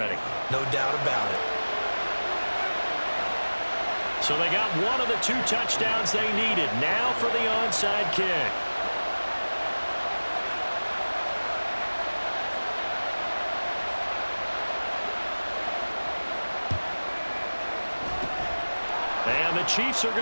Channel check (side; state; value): both; inverted; correlation -1.00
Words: No doubt about it. So they got one of the 2 touchdowns they needed. Now for the onside kick. And the Chiefs are